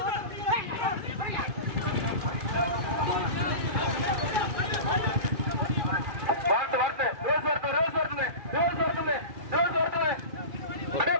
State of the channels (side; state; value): left; late; 2.4 ms